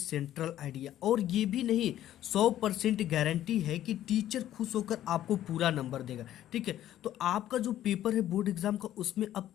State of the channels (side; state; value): right; quieter; 12.4 dB